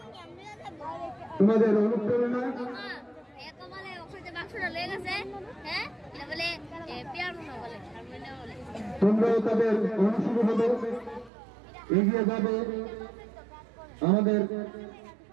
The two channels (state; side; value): drops out; left; at 11.3 s